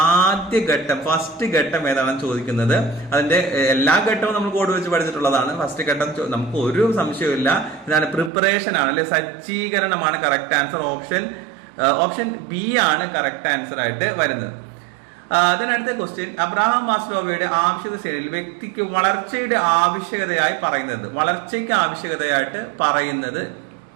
ആദ്യ ഘട്ടം, ഫസ്റ്റ് ഘട്ടം ഏതാണെന്ന് ചോദിക്കുന്നത്. അതിന്റെ എല്ലാ ഘട്ടവും നമ്മൾ കോഡ് വെച്ച് പഠിച്ചിട്ടുള്ളതാണ്. ഫസ്റ്റ് ഘട്ടം നമുക്ക് ഒരു സംശയമില്ല, ഇതാണ് പ്രിപ്പറേഷൻ ആണ് അല്ലെ, സജ്ജീകരണമാണ് കറക്റ്റ് ആൻസർ. ഓപ്ഷൻ ബി ആണ് കറക്റ്റ് ആൻസർ ആയിട്ട് വരുന്നത്. അതിനടുത്ത ക്വസ്റ്റ്യൻ, അബ്രഹാം മാസ്ലോവയുടെ ആവശ്യകത ശ്രേണിയിൽ വ്യക്തിക്ക് വളർച്ചയ്ക്ക് ആവശ്യകതയായിട്ട് പറയുന്നത്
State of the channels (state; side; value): drops out; left; at 8.3 s